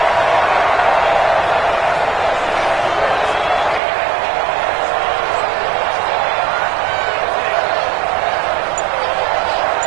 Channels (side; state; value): left; drops out; at 3.8 s